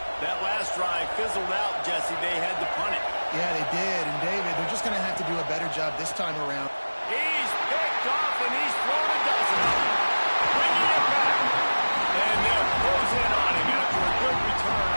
That last drive fizzled out, Jesse. They had to punt it. Yeah, they did. And, David, they're just going to have to do a better job this time around. He's picked off, and he's thrown a dozen of them. Bringing it back. And they'll close in on him after a good return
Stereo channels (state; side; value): inverted; both; correlation -1.00